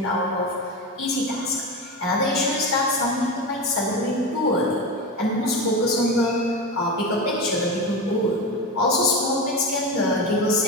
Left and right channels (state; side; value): normal; both; correlation 0.21